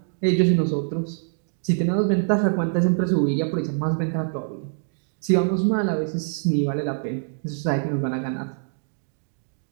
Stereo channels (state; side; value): silent; left; 62 dB below the other